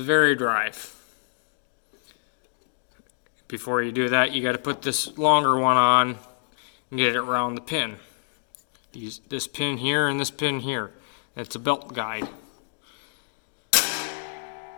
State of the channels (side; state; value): right; silent; digital silence